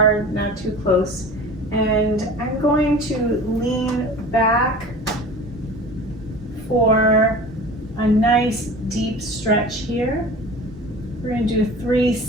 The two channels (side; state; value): both; normal; correlation 0.39